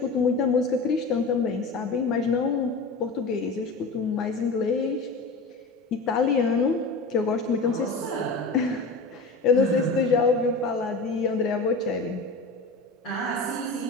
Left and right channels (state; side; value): quieter; right; 3.5 dB